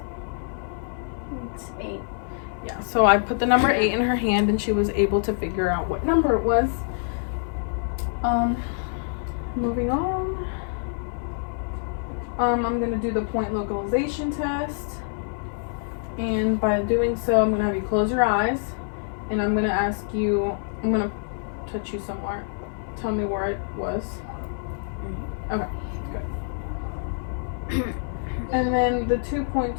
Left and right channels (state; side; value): silent; right; 58 dB below the other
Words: It's 8. Yeah, so I put the number 8 in her hand, and she was able to figure out what number it was. Moving on. I'm going to do the point localization test. And by doing so, I'm going to have you close your eyes. And I'm going to ask you, I'm going to touch you somewhere. Tell me where it was. Okay, good. And then the 2-point